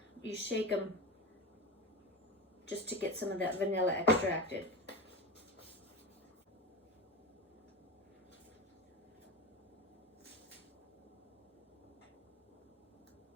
You shake them just to get some of that vanilla extracted.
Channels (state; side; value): normal; both; correlation 0.21